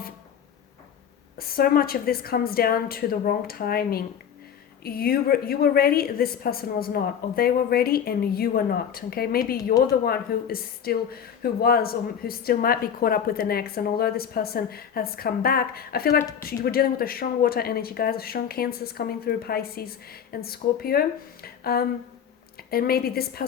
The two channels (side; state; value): right; quieter; 8.3 dB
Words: this comes down to the wrong timing. You were ready, this person was not, or they were ready and you were not. Okay, maybe you're the one who still might be caught up with an ex, and although this person has come back, I feel like you were dealing with a strong water energy, guys, a strong Cancers coming through, Pisces and Scorpio. And maybe this